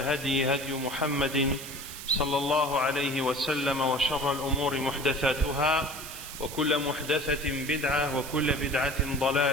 هدي محمد صلى الله عليه وسلم وشر الأمور محدثاتها وكل محدثة بدعة وكل بدعة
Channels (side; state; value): right; noise; hiss, 11 dB below the sound